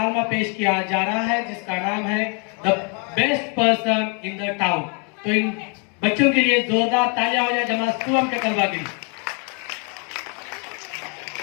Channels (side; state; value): right; quieter; 36.6 dB